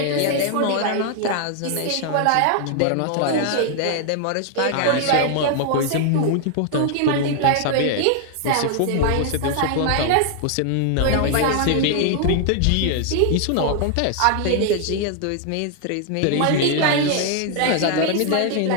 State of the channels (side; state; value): both; different; correlation 0.00